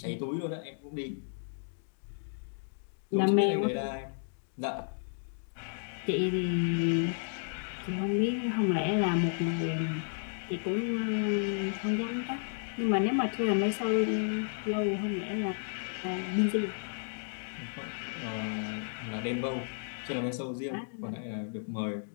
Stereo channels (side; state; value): right; silent; digital silence